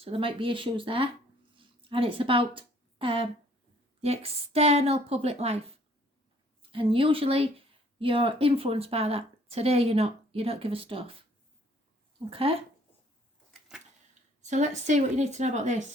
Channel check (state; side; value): normal; both; correlation 0.60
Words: there might be issues there. And it's about the external public life. And usually you're influenced by that. Today you're not. You don't give a stuff. Okay? So let's see what you need to know about